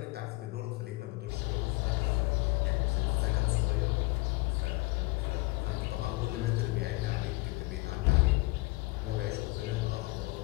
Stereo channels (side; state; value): right; quieter; 23.2 dB